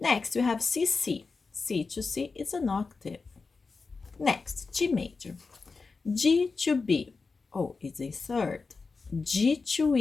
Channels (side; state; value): right; quieter; 4.4 dB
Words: we have C, C. C to C is an octave. Next, G major. G to B. Oh, it's a third. G to